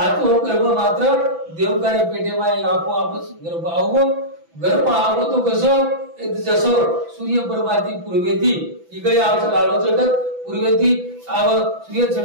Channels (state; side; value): late; left; 6.0 ms